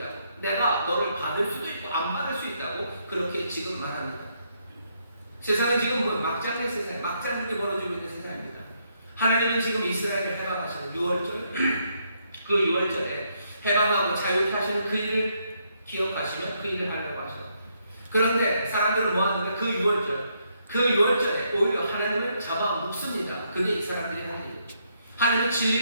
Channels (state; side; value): inverted; both; correlation -0.75